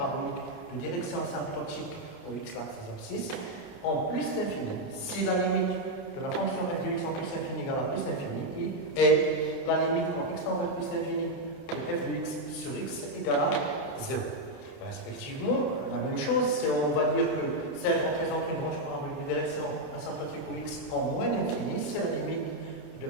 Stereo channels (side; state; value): right; late; 29 ms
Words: de direction asymptotique au x, l'axe des abscisses, en plus l'infini. Si la limite de la fonction f de x en plus infini égale à plus l'infini, et la limite quand x tend vers plus l'infini de f de x sur x égale à 0. Respectivement, la même chose, c'est on va dire que CF représente une branche parabolique de direction asymptotique au x en moins l'infini, si la limite de